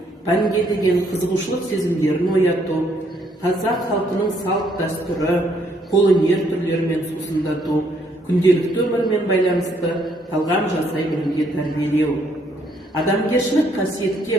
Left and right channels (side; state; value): both; normal; correlation 0.69